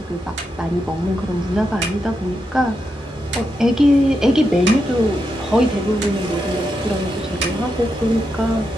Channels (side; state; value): both; normal; correlation 0.85